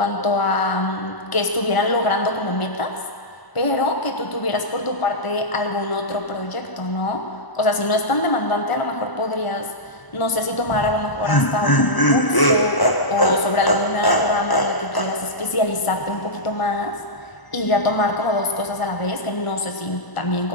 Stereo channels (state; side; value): late; right; 1.0 ms